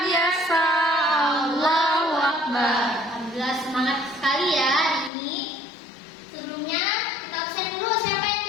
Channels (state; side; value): drops out; right; at 5.1 s